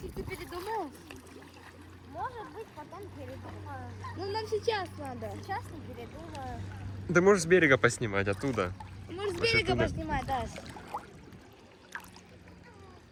ты передумал? Может быть, потом передумаю. Ну, нам сейчас надо. Сейчас не передумаю. Ты можешь с берега поснимать, оттуда. Может, с Вообще берега туда. поснимать, Даш?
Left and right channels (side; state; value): both; identical; correlation 1.00